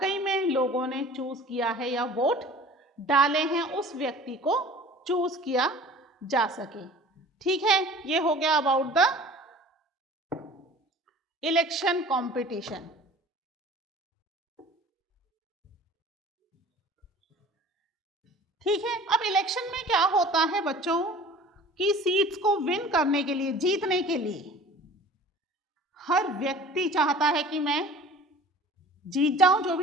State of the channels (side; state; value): both; normal; correlation 0.44